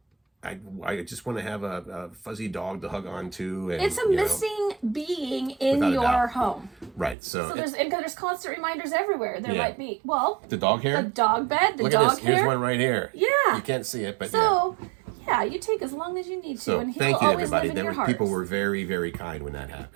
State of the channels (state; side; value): drops out; left; at 7.2 s